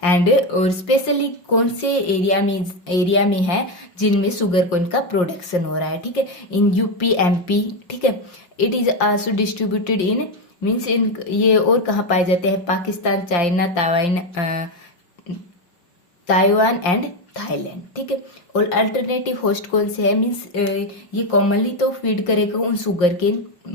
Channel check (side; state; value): right; late; 5.4 ms